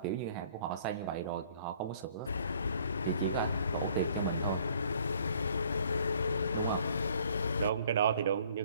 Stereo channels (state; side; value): inverted; both; correlation -0.58